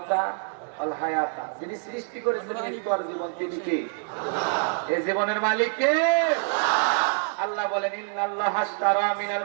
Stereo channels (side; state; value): left; silent; 61 dB below the other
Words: ওয়াল হায়াতা, যিনি সৃষ্টি করেছেন মৃত্যু আর জীবন, তিনি কে? এই জীবনের মালিক কে? আল্লাহ বলেন, ইন্নাল্লাহা আশতারা মিনাল